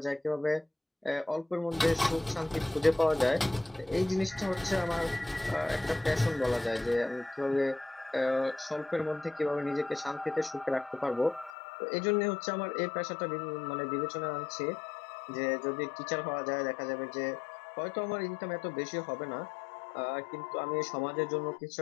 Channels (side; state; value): right; drops out; at 11.5 s